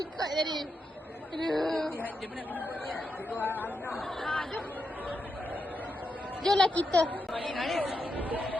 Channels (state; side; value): normal; both; correlation 0.85